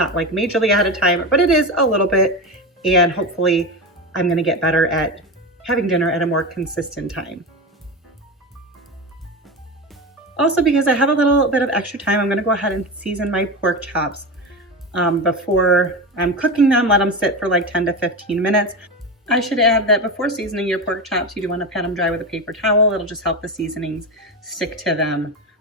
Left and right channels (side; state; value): both; normal; correlation 0.21